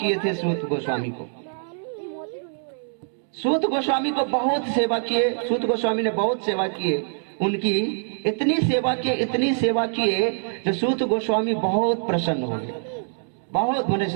थे सूत गोस्वामी को। सूत गोस्वामी को बहुत सेवा किए, सूत गोस्वामी ने बहुत सेवा किए उनकी, इतनी सेवा किए जो सूत गोस्वामी बहुत प्रसन्न हो गए, बहुत बने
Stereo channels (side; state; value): left; silent; digital silence